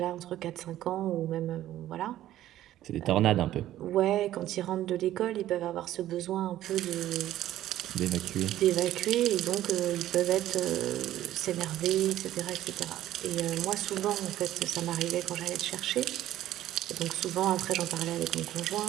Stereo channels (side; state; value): left; quieter; 13.3 dB